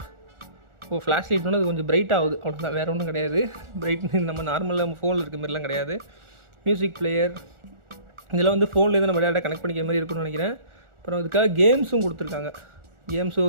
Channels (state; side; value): late; left; 1.4 ms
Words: ஃப்ளாஷ் லைட்னா அது கொஞ்சம் பிரைட் ஆகுது, அவ்வளோதான், வேறு ஒன்றும் கிடையாது. பிரைட் நம்ம நார்மலாக நம்ம ஃபோனில் இருக்க மாதிரிலாம் கிடையாது. மியூசிக் பிளேயர் இதெல்லாம் வந்து ஃபோன்லேருந்து நம்ம டேரெக்டாக கனெக்ட் பண்ணிக்கிற மாதிரி இருக்குன்னு நினைக்கிறேன். அப்புறம் இதுக்காக கேம்ஸும் கொடுத்துருக்காங்க.